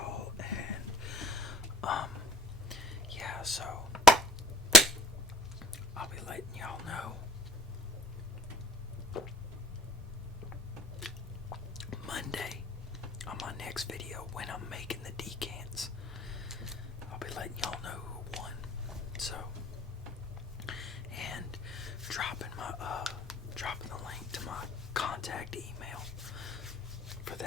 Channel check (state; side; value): normal; both; correlation 0.49